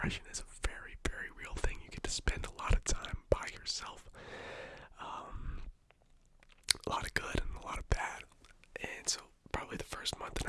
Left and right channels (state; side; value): identical; both; correlation 1.00